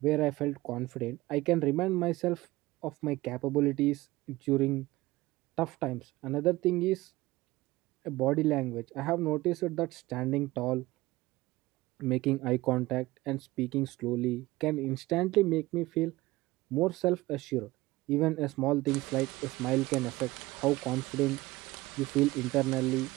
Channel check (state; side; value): quieter; left; 19.2 dB